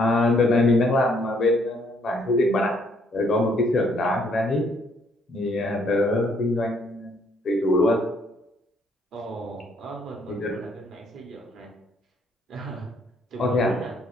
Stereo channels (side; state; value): both; normal; correlation 0.67